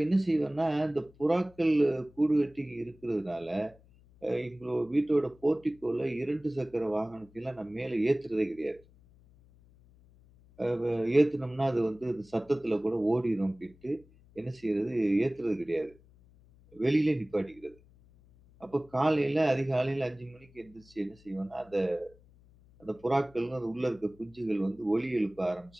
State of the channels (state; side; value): noise; left; hum, 27 dB below the sound